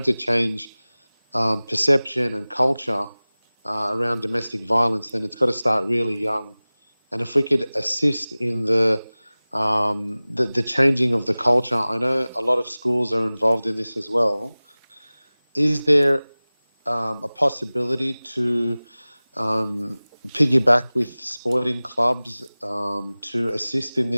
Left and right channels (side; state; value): both; inverted; correlation -0.99